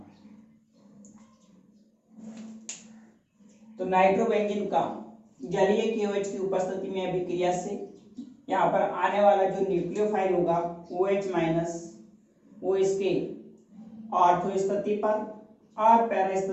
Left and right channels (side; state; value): both; identical; correlation 1.00